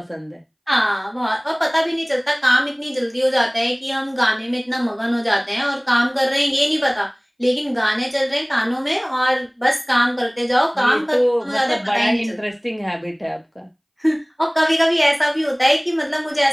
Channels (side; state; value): both; identical; correlation 1.00